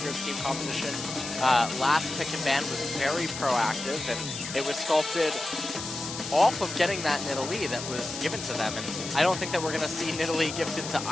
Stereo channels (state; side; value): noise; left; hiss, 8 dB below the sound